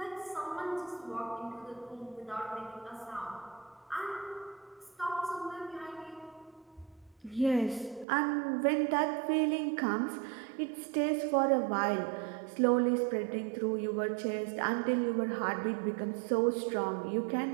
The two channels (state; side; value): drops out; left; at 8.1 s